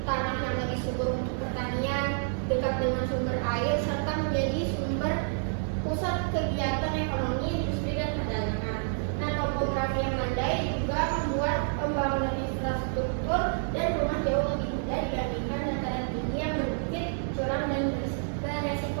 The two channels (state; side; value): silent; left; 59 dB below the other